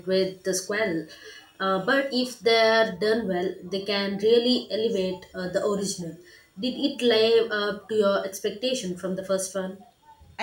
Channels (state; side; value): identical; both; correlation 1.00